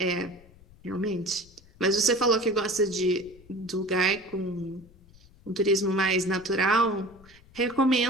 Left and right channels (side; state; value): left; noise; rumble, 25 dB below the sound